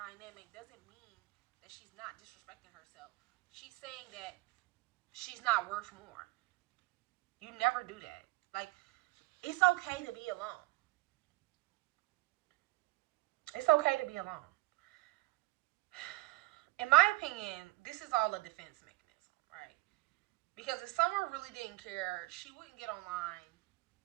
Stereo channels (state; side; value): quieter; left; 20.4 dB